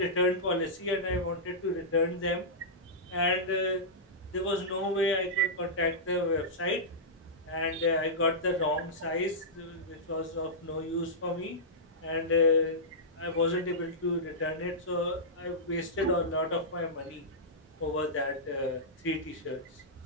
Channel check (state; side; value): normal; both; correlation -0.13